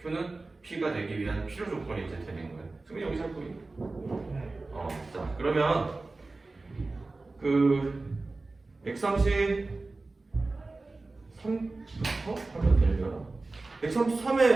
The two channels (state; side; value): quieter; left; 3.4 dB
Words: Q는 P가 되기 위한 필요 조건이 이제 되는 거예요. 승민이 여기 잡고 있네. 자, 그러면 그 X33부터 하면 되려나?